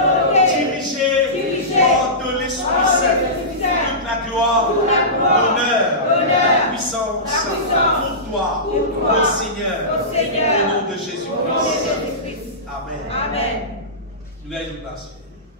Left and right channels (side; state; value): both; normal; correlation -0.20